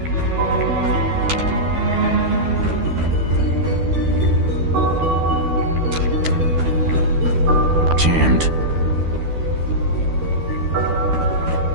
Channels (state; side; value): late; left; 12 ms